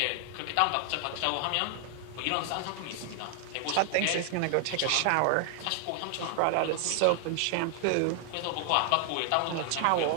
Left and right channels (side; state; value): both; different; correlation 0.00